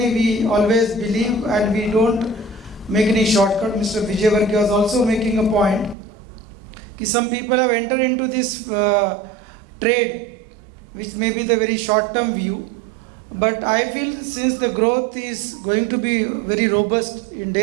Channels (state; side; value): drops out; left; at 6.0 s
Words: we always believe and we don't make any shortcut. Mr. Vijay Varghese was also making a point. Some people have entered into this trade, which may be the very short-term view. But I feel since the growth is going to be very robust in